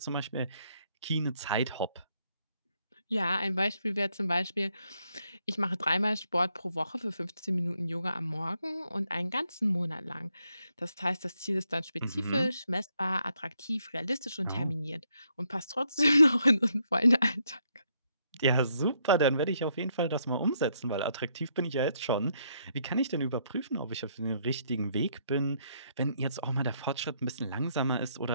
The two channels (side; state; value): both; inverted; correlation -0.74